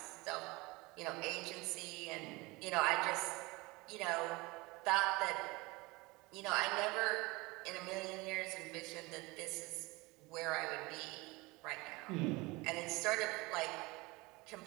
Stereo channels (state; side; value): quieter; left; 23.5 dB